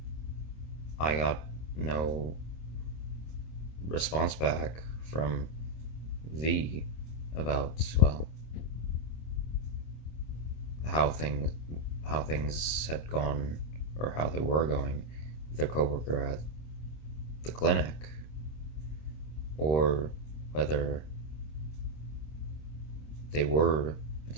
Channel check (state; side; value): late; right; 26 ms